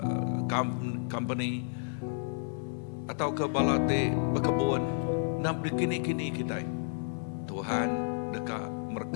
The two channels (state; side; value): silent; right; 57 dB below the other